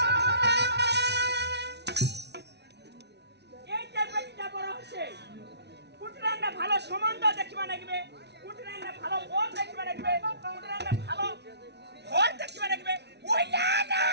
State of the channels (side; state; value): left; late; 0.50 ms